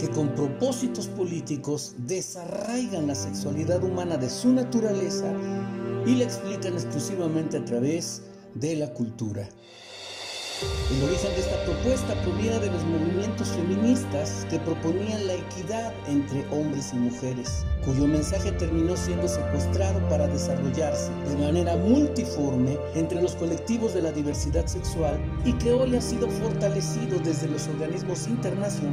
con propósitos políticos desarraigan la sexualidad humana de su naturaleza y la explican exclusivamente a través de la cultura. El origen de esta propuesta proviene de los movimientos feministas que proponían la equidad entre hombres y mujeres, cuyo mensaje terminó siendo secuestrado para desarrollarse de manera multiforme entre los colectivos de la diversidad sexual y que hoy ha sido fortalecido desde los organismos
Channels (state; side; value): identical; both; correlation 1.00